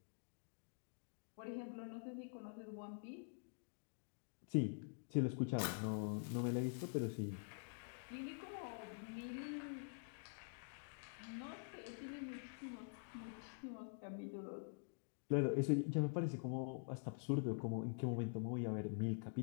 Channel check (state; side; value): silent; right; digital silence